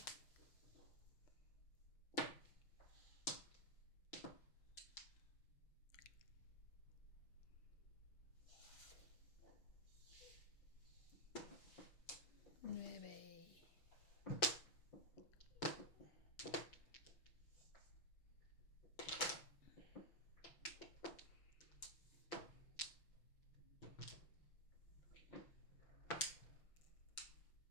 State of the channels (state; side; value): late; right; 6.0 ms